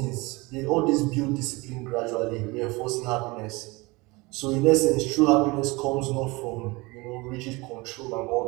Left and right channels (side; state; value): left; quieter; 24.2 dB